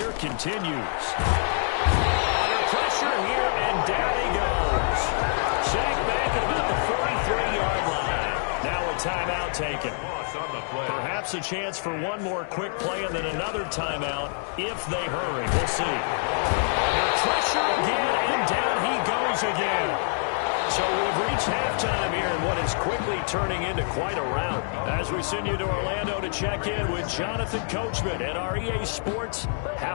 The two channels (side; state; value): right; silent; digital silence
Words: continues. Under pressure here, and down he goes. Sacked back at about the 43-yard line. Now a timeout taken. Perhaps a chance for one more quick play and then another timeout if they hurry. We'll see. Under pressure again, and down he goes again. So we've reached halftime here in what is quickly turning into quite a rout. As we send you to Orlando to check in with Jonathan Coachman at our EA Sports